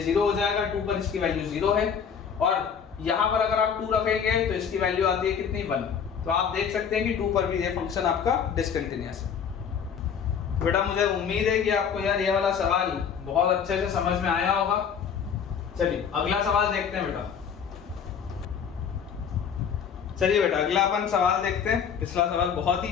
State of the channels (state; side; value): quieter; right; 7.2 dB